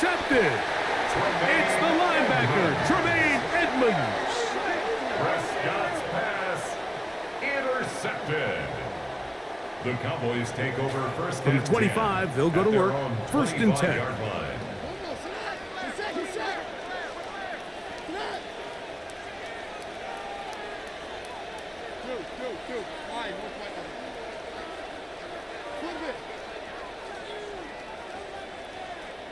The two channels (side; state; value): both; identical; correlation 1.00